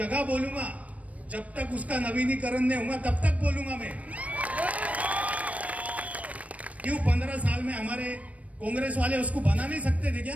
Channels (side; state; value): left; late; 0.067 ms